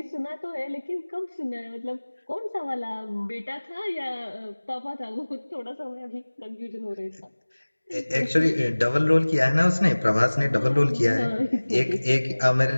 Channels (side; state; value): both; inverted; correlation -1.00